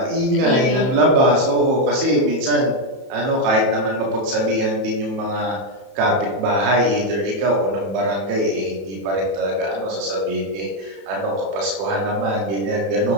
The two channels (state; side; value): late; left; 31 ms